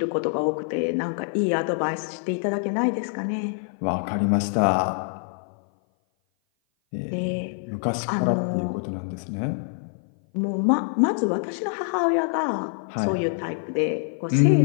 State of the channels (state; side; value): silent; right; 56 dB below the other